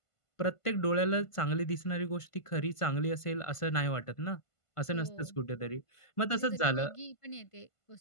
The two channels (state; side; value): late; right; 1.5 ms